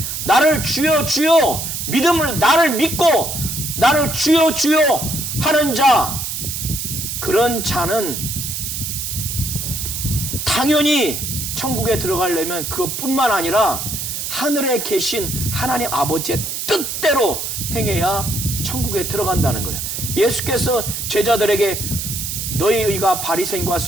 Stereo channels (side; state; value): right; noise; hiss, 4 dB below the sound